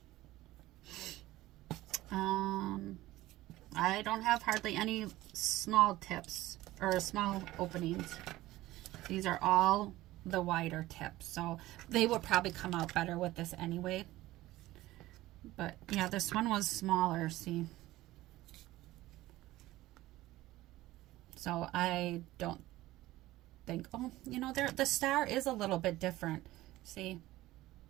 I don't have hardly any small tips or small openings. These are all the wider tips, so they would probably come out better with this anyway. But yeah, this one was smaller, see. So I don't think, oh, you know, the star is a little bit different. See,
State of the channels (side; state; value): left; quieter; 16.9 dB